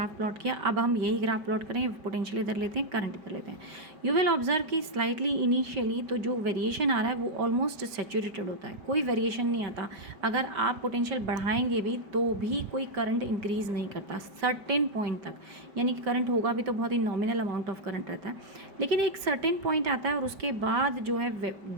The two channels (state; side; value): late; left; 4.9 ms